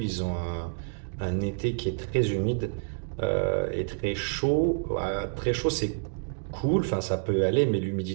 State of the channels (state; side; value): silent; left; digital silence